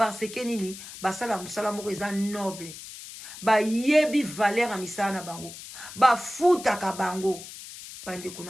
que nini basala musala moko eza noble ba yebi valeur a misala na bango ba futaka bango bande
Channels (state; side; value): noise; left; hiss, 13 dB below the sound